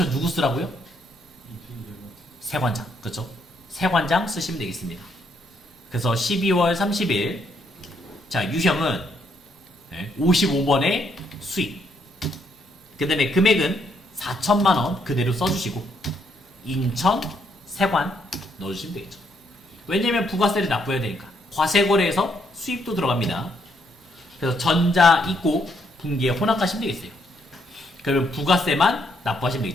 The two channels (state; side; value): normal; both; correlation 0.73